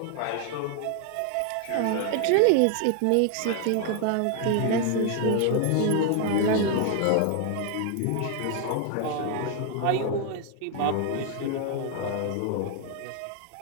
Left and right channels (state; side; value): different; both; correlation 0.00